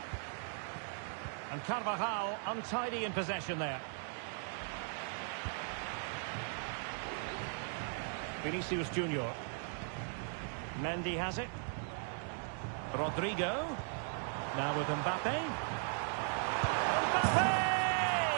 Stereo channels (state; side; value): silent; left; 52 dB below the other